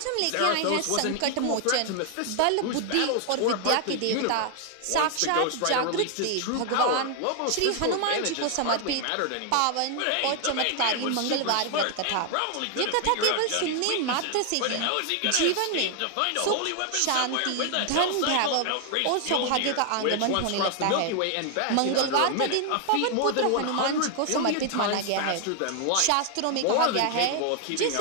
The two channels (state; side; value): different; both; correlation 0.00